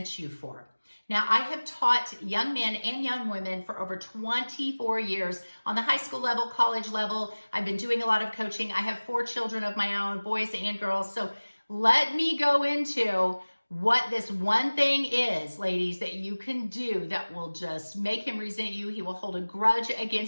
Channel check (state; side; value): inverted; both; correlation -1.00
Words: you for? Now, I have taught young men and young women for over 24 years on the high school level, college level. I've been doing a lot of coaching. I have 4 children of my own, boys and girls. So let me go into what this one thing is, ladies, that you can do that will just make him resent you. He will hold a grudge